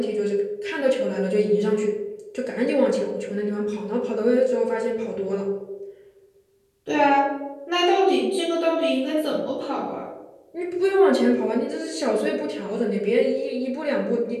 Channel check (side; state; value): both; identical; correlation 1.00